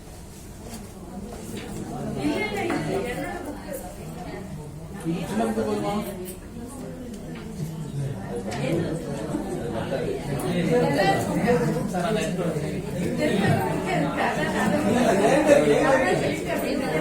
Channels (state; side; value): identical; both; correlation 1.00